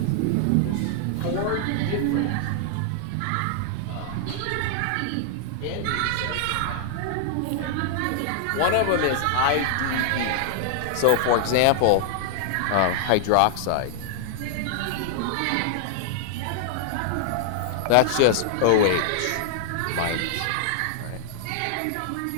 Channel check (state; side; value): different; both; correlation 0.00